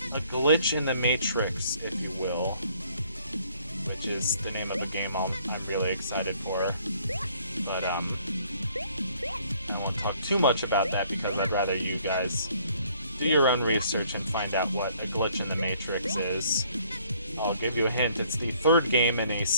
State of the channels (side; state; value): both; inverted; correlation -0.62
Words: A glitch in the Matrix, if you will. Which is the name of a game I'm really excited for. But, I won't talk too much about that because I'd rather you guys do your own research and find out what a glitch in the Matrix is. I'll give you a hint. It's the third game in a